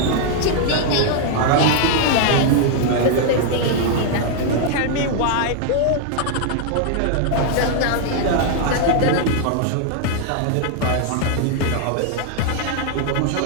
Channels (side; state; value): both; different; correlation 0.00